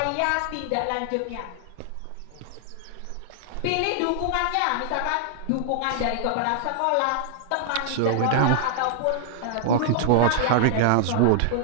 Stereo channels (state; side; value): different; both; correlation 0.00